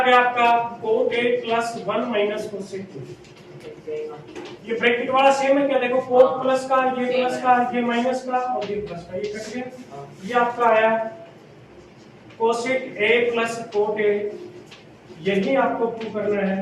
गया आपका cot A plus 1 minus cosec ए। ये ब्रैकेट वाला सेम है क्या? देखो कोट प्लस का, ये प्लस का, ये माइनस का, और ये प्लस का, ये कट गया। ये आपका आया कोसेक ए प्लस कोट ए। यही आपको प्रूव करना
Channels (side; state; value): both; identical; correlation 1.00